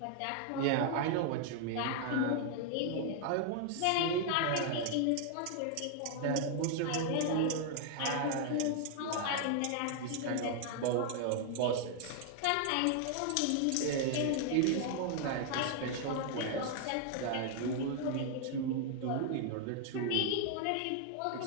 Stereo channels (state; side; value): different; both; correlation 0.00